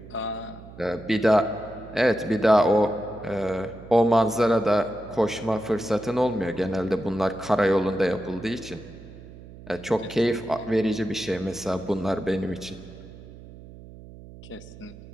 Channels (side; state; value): right; noise; hum, 17 dB below the sound